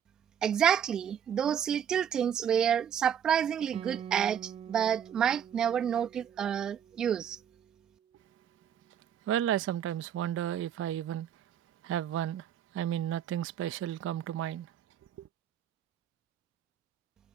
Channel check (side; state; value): left; quieter; 9.0 dB